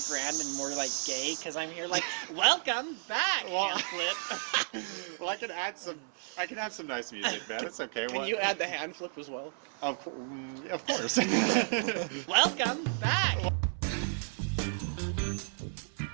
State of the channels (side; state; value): left; silent; 56 dB below the other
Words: grand and more like gay because I'm here like, welcome back, Hamlet. Well, I can add some nice music, man. It's okay. Can you add the hand flip as well? Of course. Welcome back.